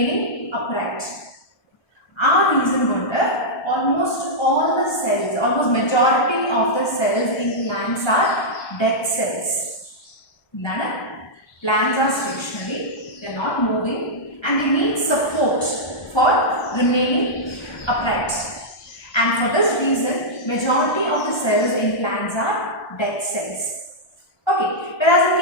upright. Our reason wonder, almost all the cells, almost majority of the cells in plants are dead cells. Plants are stationary, they are not moving and they need support for remaining upright. And for this reason, majority of the cells in plants are dead cells. Okay, whereas in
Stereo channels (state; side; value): late; right; 1.3 ms